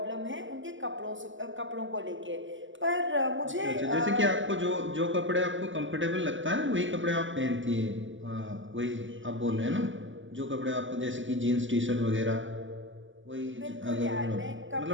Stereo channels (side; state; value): left; late; 0.55 ms